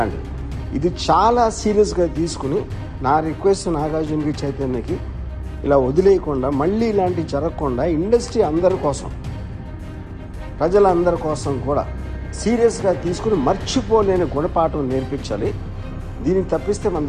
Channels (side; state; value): both; identical; correlation 1.00